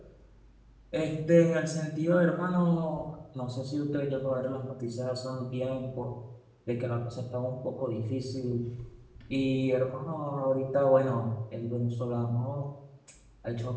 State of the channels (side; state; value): both; identical; correlation 1.00